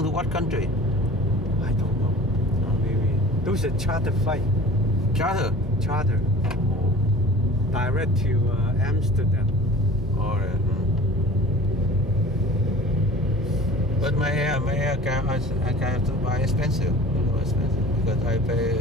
to what country? I don't know. Maybe those are charter flight. Charter. Charter. Direct to Amsterdam. All right. But my air car, I have to buy expensive. Because I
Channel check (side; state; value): both; normal; correlation 0.43